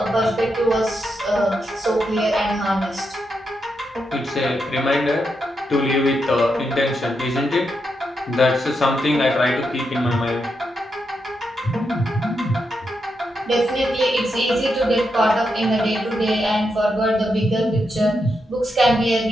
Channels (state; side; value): normal; both; correlation 0.84